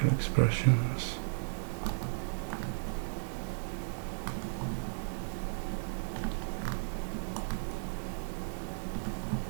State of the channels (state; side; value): silent; left; digital silence